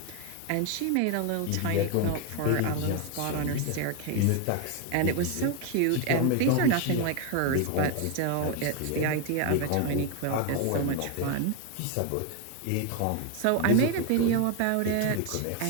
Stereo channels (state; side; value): different; both; correlation 0.01